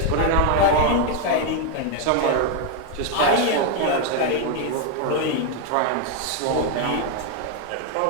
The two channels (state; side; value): different; both; correlation 0.01